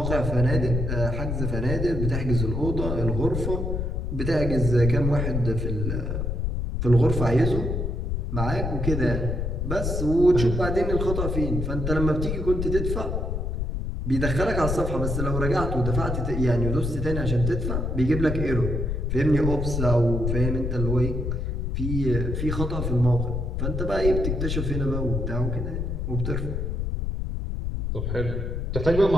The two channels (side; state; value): left; noise; rumble, 1 dB below the sound